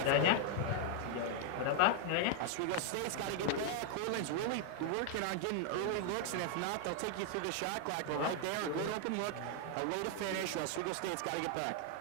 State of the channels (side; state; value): both; different; correlation 0.00